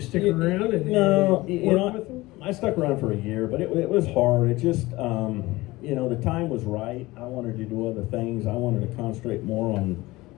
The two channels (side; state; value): right; quieter; 19.9 dB